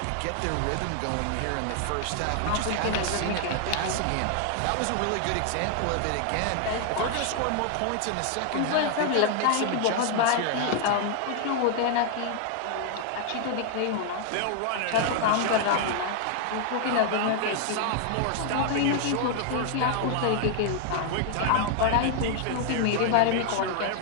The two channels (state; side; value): different; both; correlation 0.00